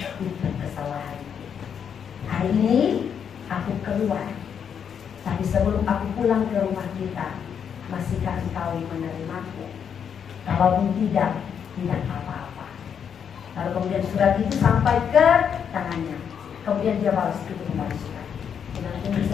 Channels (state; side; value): quieter; right; 7.7 dB